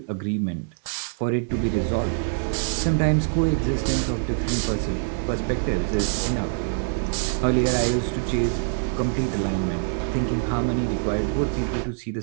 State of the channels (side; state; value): left; silent; digital silence